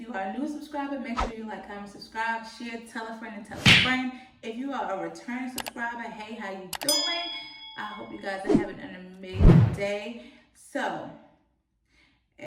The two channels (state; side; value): identical; both; correlation 1.00